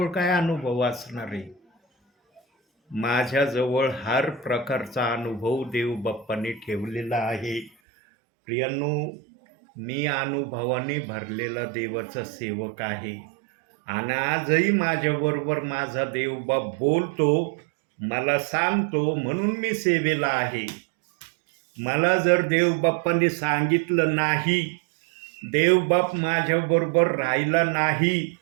काय अनुभव असणार आहे. माझ्याजवळ हर प्रकारचा अनुभव देवबाप्पाने ठेवलेला आहे. प्रियांनो, मी अनुभवाने भरलेला देवाचा सेवक आहे. आणि आजही माझ्याबरोबर माझा देवबाप बोलतो, मला सांगतो, म्हणून मी सेवेला आहे. मला जर देवबाप्पाने सांगितलं नाही, देवबाप माझ्याबरोबर राहिला नाही,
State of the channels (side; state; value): left; drops out; at 7.7 s